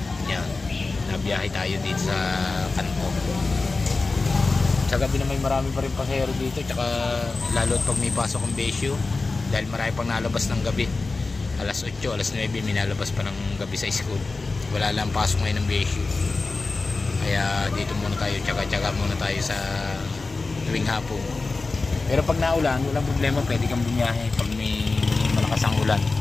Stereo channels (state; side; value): quieter; right; 3.7 dB